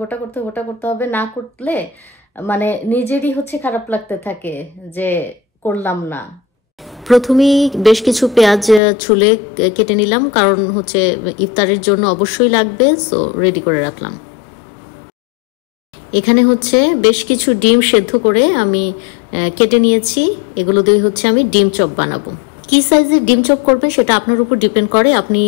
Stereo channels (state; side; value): drops out; right; at 8.8 s